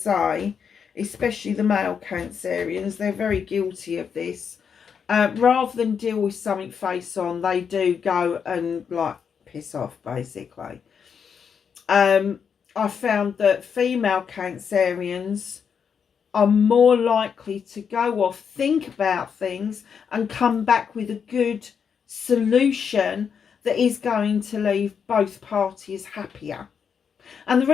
especially the male Cancerians, they're very guilty of this. Rather than deal with something face on, they do go and, like, piss off, basically. I found that female Cancerians are more likely to go off, think about things, and come back with a good solution that is going to leave both parties happier. And the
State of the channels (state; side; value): quieter; right; 6.9 dB